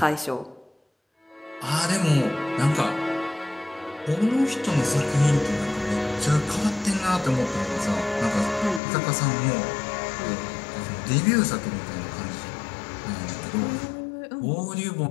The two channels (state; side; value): drops out; right; at 8.8 s